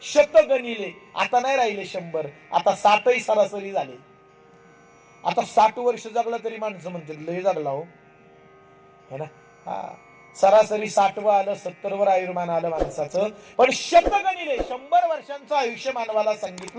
शतगणिले, आता नाही राहिले 100, आता 60 सरासरी झाले. आता 60 वर्ष जगलं तरी माणसं म्हणतील लय जगला हो, है ना. हा, सरासरी 60 आलं, 70 आयुर्मान आलं माणसाचं. पण शतगणिले 100 वर्षांचं आयुष्य मानवाला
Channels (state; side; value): identical; both; correlation 1.00